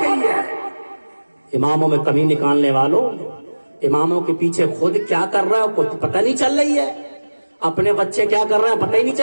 گئی ہے. اماموں میں کمی نکالنے والوں, اماموں کے پیچھے خود کیا کر رہا ہے کچھ پتہ نہیں چل رہی ہے. اپنے بچے کیا کر رہے ہیں پتہ ہی نہیں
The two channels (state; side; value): inverted; both; correlation -1.00